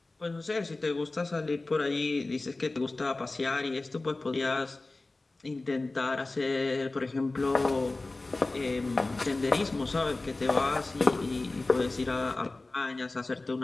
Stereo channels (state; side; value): quieter; right; 3.2 dB